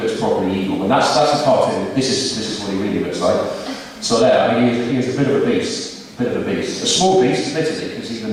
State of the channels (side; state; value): both; identical; correlation 1.00